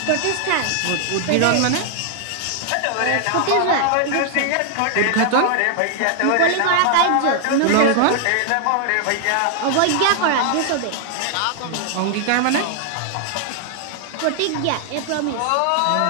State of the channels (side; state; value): both; different; correlation 0.00